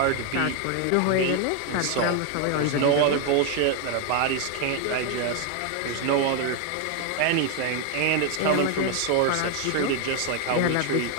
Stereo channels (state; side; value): different; both; correlation 0.01